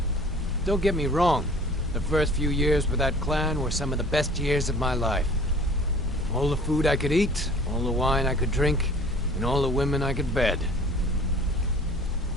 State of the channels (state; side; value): normal; both; correlation 0.48